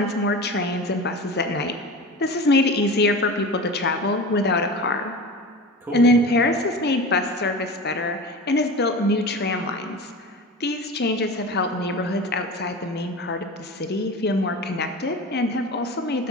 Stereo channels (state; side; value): normal; both; correlation 0.31